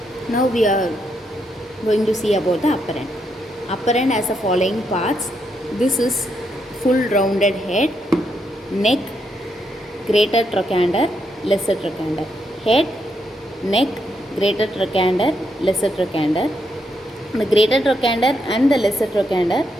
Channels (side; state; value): both; normal; correlation 0.79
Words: Now we are going to see about the upper end. Upper end has the following parts. This is full rounded head, neck, greater trochanter, lesser trochanter. Head, neck, greater trochanter, lesser trochanter. The greater trochanter and the lesser trochanter